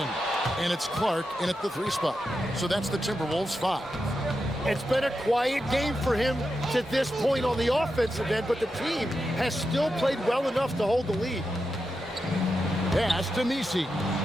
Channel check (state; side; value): normal; both; correlation 0.88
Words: And it's Clark in at the 3 spot. So that's the Timberwolves 5. It's been a quiet game for him to this point on the offensive end, but the team has still played well enough to hold the lead. Pass to Misi.